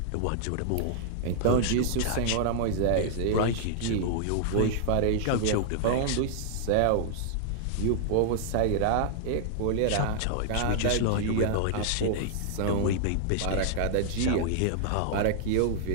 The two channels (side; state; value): both; different; correlation -0.01